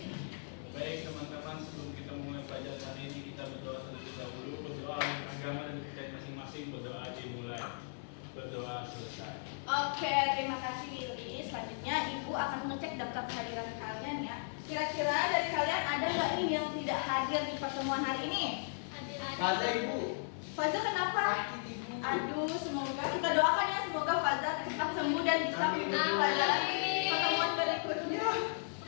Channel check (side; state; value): right; silent; 54 dB below the other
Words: Baik teman-teman, sebelum kita mulai pelajaran hari ini, kita berdoa terlebih dahulu. Berdoa untuk agama dan kita masing-masing. Berdoa dimulai. Berdoa selesai. Oke, terima kasih Billy. Selanjutnya Ibu akan mengecek daftar kehadiran kalian ya. Kira-kira dari kalian ada nggak nih yang tidak hadir di pertemuan hari ini? Ada Ibu. Faza kenapa? Sakit Ibu. Aduh, semoga kita doakan ya, semoga Faza cepat sembuh dan bisa mengikuti pelajaran pertemuan berikutnya.